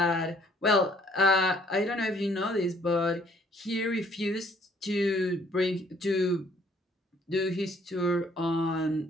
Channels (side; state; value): both; normal; correlation 0.62